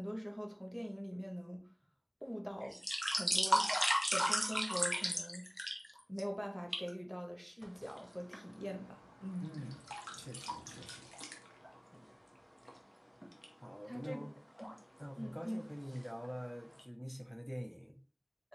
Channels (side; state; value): both; identical; correlation 1.00